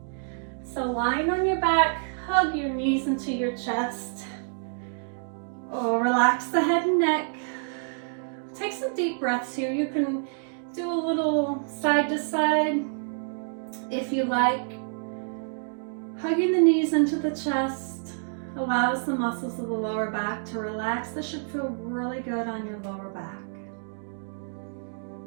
So lying on your back, hug your knees into your chest. Oh, relax the head and neck. Take some deep breaths here. You can do a little side to side if you like. Hugging the knees into the chest allows the muscles of the lower back to relax. This should feel really good on your lower back.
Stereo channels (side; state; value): left; silent; digital silence